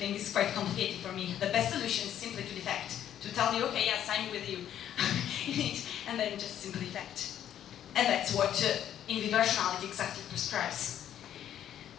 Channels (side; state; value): right; quieter; 10.6 dB